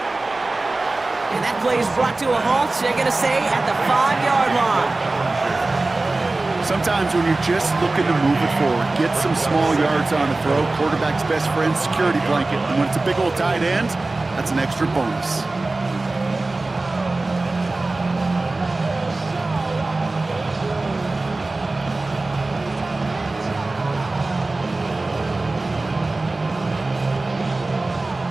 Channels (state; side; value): quieter; left; 3.2 dB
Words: And that play is brought to a halt, they're going to say, at the 5-yard line. Sometimes when you're just looking to move it forward, get some small yards on the throw, quarterback's best friend, security blanket. And when it's a big old tight end, that's an extra bonus.